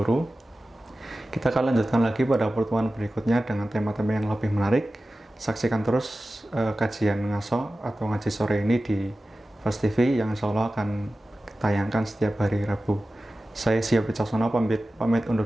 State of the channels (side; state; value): both; normal; correlation 0.95